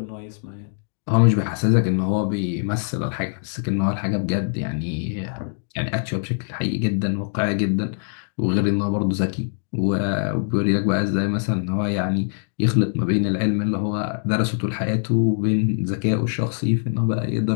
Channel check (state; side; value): silent; right; digital silence